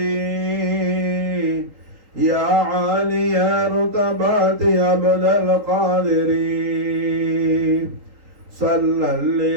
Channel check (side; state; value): left; late; 3.9 ms